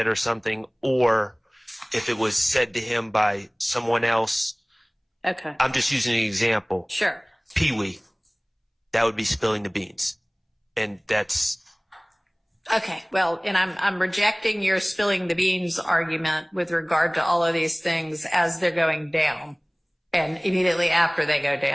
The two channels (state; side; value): identical; both; correlation 1.00